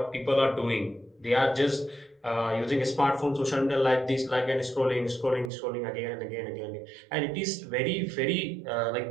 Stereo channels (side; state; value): left; drops out; at 5.5 s